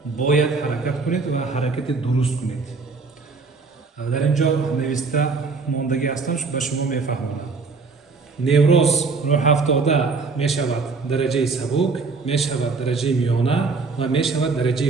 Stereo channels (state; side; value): quieter; left; 4.3 dB